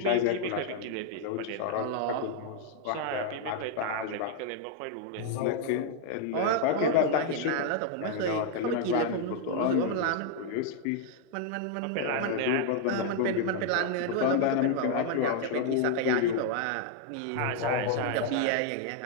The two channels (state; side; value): different; both; correlation 0.00